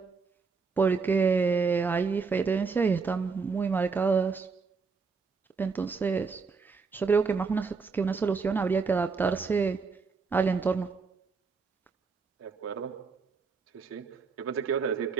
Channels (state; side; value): quieter; left; 4.9 dB